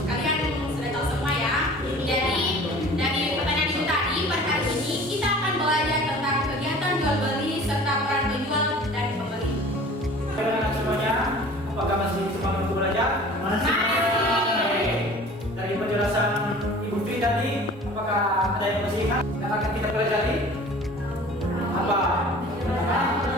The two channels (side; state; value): both; normal; correlation 0.44